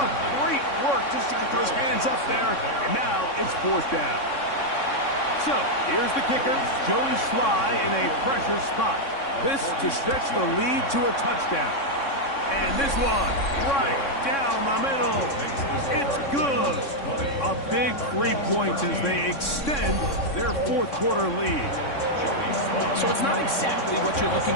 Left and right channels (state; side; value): late; right; 3.6 ms